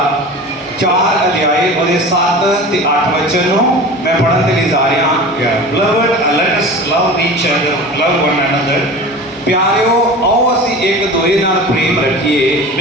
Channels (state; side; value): normal; both; correlation 0.35